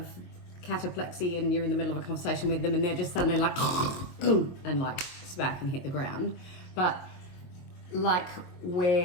cataplexy and you're in the middle of a conversation with them and they're just suddenly like and like smack and hit the ground, but like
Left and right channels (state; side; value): late; right; 22 ms